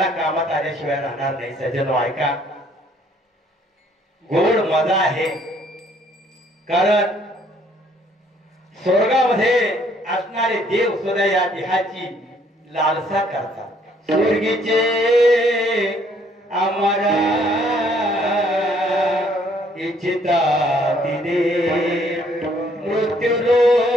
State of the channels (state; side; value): normal; both; correlation 0.64